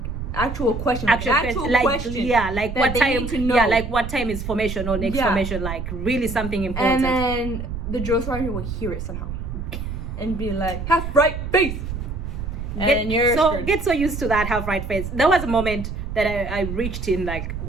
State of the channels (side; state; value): right; noise; rumble, 6 dB below the sound